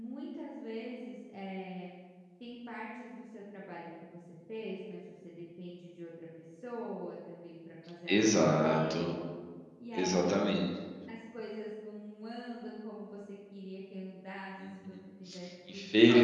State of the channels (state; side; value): identical; both; correlation 1.00